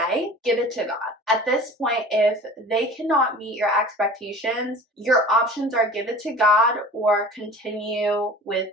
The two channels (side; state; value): both; normal; correlation 0.41